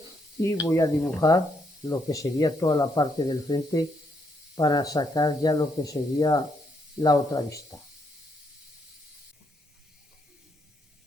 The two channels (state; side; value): normal; both; correlation 0.75